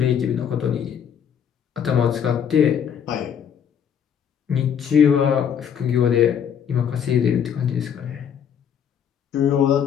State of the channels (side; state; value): right; quieter; 8.2 dB